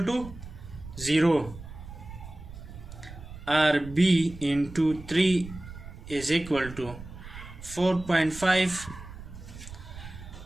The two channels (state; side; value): noise; right; rumble, 14 dB below the sound